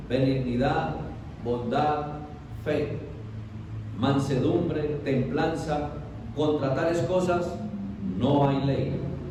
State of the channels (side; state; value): both; identical; correlation 1.00